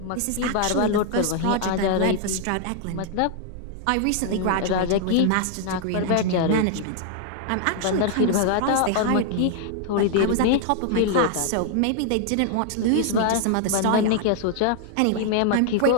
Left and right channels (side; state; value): both; different; correlation 0.00